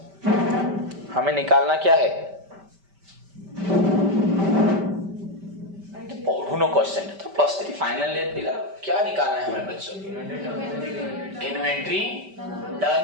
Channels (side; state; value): left; late; 5.1 ms